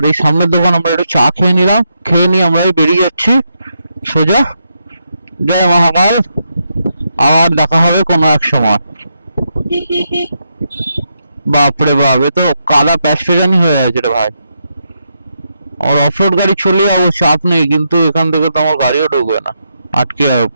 এই সামনের দোকান আমরা একটু চা খেয়ে নিলাম, খেয়ে নিয়ে আমরা বেরিয়ে যাচ্ছি সোজা। জয় মহাকাল। আর দেখা হবে কোনো এক সময়। বাপরে বাপ, এ তো কাদা প্যাস্টেজানি হয়ে গেছে রে ভাই। আমার অফরোড গাড়ি চলে যাবো, চাপ নেই, কিন্তু এখান থেকে তো আমার গাড়িও ঢুকবে না, আটকে যাবে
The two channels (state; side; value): inverted; both; correlation -0.82